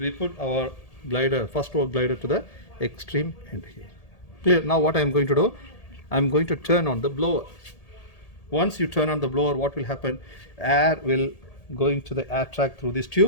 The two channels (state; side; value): late; right; 1.8 ms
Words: put our glider, first row glider, to the extreme end here. Clear? Now what I am going to do, I am going to turn on the blower. Once you turn on the blower, what will happen? Air will go into the air track through this